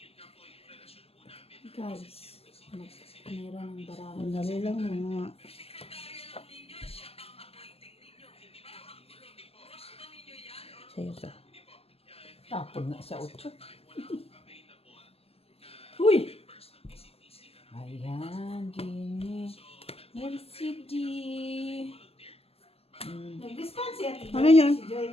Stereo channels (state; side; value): late; right; 0.29 ms